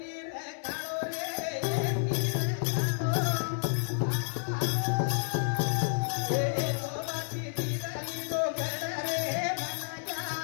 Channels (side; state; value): right; silent; 57 dB below the other